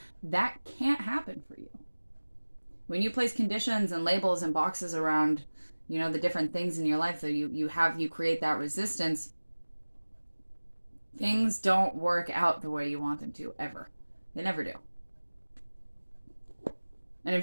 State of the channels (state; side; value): inverted; both; correlation -1.00